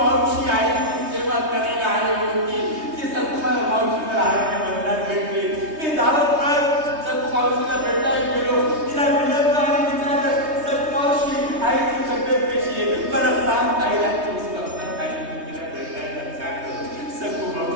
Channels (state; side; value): late; left; 3.2 ms